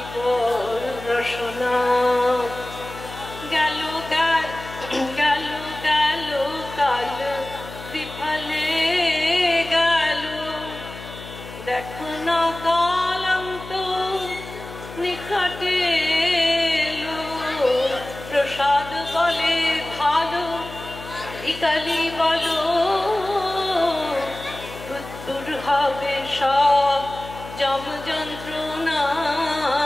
বল রসনা। গেল গেল গেল গেল কাল বিফলে গেল, দেখো না কালান্ত নিকটে এলো। প্রসাদ বলে ভালো কালী বলো, দূর হবে সব যম যন্ত্রণা।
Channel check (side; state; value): left; noise; hum, 14 dB below the sound